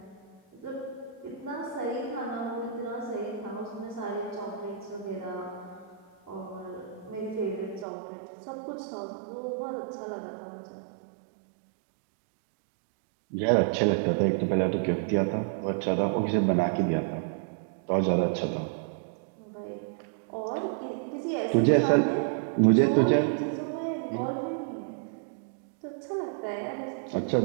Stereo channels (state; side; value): drops out; left; at 7.9 s